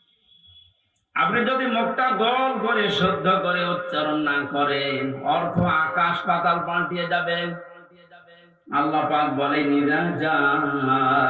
আপনি যদি মুখটা গোল করে শুদ্ধ করে উচ্চারণ না করেন, অর্থ আকাশ পাতাল পাল্টিয়ে যাবে। আল্লাহ পাক বলেন ইযা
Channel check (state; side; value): identical; both; correlation 1.00